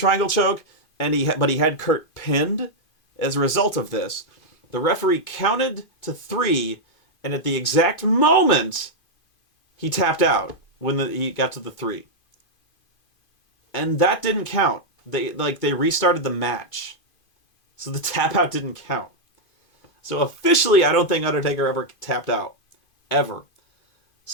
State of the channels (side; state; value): right; late; 2.5 ms